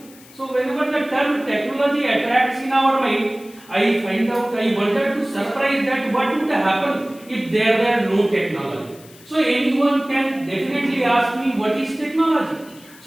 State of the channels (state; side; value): noise; left; hiss, 23 dB below the sound